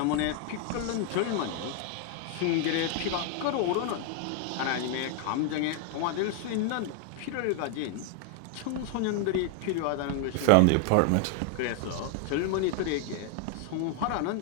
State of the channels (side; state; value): both; different; correlation 0.00